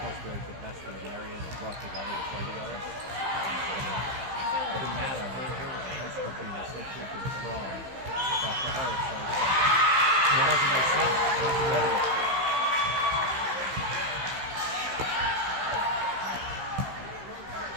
to be like the best in the area and they're brought together to play together. It doesn't matter. Her high school team is so freaking strong that for her it's like, it doesn't make sense.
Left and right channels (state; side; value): late; left; 15 ms